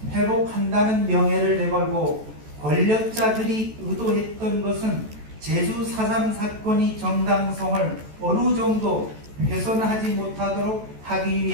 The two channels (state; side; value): late; left; 14 ms